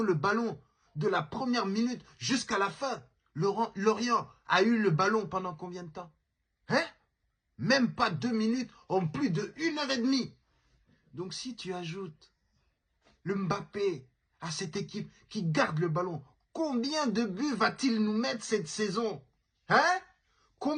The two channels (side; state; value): both; identical; correlation 1.00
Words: le ballon de la première minute jusqu'à la fin. Lorient a eu le ballon pendant combien de temps? Hein? Même pas 2 minutes en plus de 1 heure et demie. Donc si tu ajoutes le Mbappé à cette équipe qui garde le ballon, combien de buts va-t-il nous mettre cette saison? Hein?